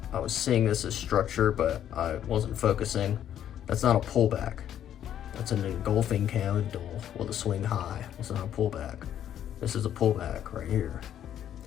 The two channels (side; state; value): right; quieter; 10.4 dB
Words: I was seeing this as structure, but I wasn't focusing. That's not a pullback. That's an engulfing candle with a swing high. It's not a pullback. This is a pullback right here.